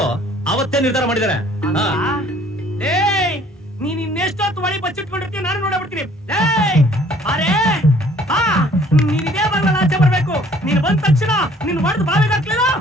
ಅವತ್ತೇ ನಿರ್ಧಾರ ಮಾಡಿದಾರೆ. ನೀನ್ ಇನ್ನೆಷ್ಟೊತ್ತು ಒಳಿ ಬಚ್ಚಿಟ್ಕೊಂಡಿರ್ತೀವಿ, ನಾನು ನೋಡಬಿಡ್ತೀನಿ. ಅರೇ ನೀನ್ ಇದೇ ಬರಲ್ಲ, ಆಚೆ ಬರ್ಬೇಕು. ನೀನ್ ಬಂದ ತಕ್ಷಣ ನೀನ್ ಹೊಡೆದು ಬಾವಿಗೆ ಹಾಕ್ಲಿಲ್ಲ,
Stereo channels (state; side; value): normal; both; correlation 0.57